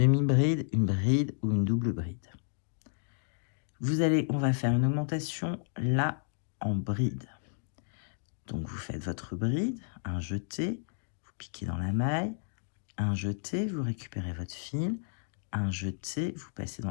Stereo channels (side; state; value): right; silent; digital silence